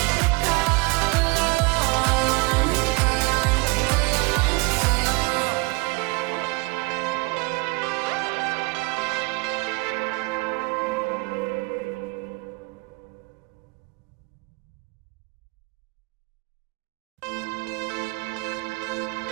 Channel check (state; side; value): quieter; left; 26.7 dB